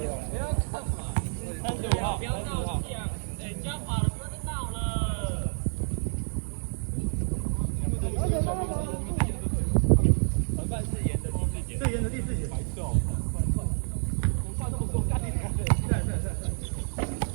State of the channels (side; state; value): left; silent; digital silence